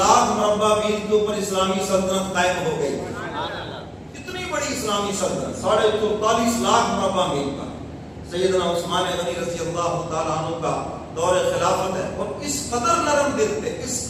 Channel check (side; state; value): both; identical; correlation 1.00